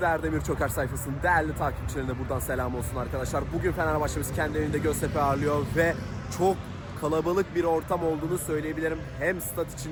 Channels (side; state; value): both; identical; correlation 1.00